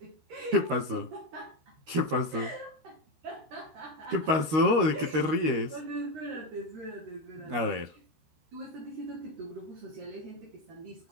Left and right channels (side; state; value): left; late; 13 ms